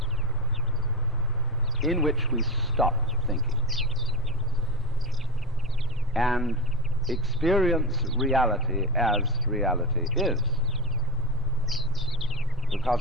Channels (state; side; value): normal; both; correlation 0.21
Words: in which we stop thinking and experience reality as reality is.